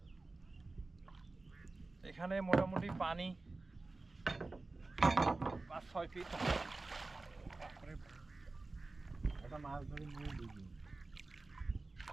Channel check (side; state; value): left; quieter; 3.3 dB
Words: এখানে মোটামুটি পানি 5-6 ফিট।